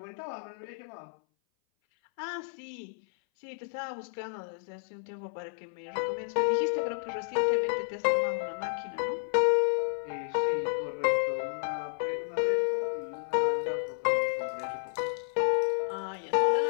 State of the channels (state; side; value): silent; right; 57 dB below the other